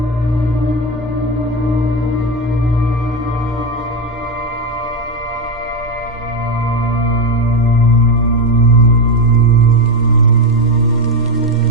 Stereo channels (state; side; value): normal; both; correlation 0.12